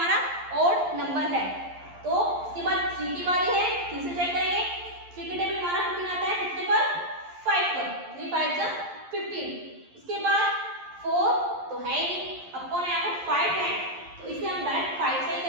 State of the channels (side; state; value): left; late; 11 ms